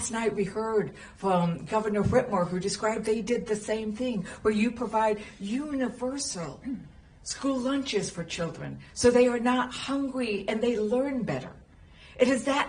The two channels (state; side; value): identical; both; correlation 1.00